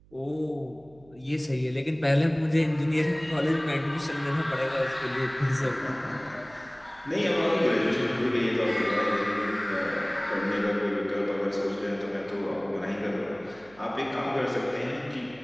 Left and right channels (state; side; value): noise; right; hum, 27 dB below the sound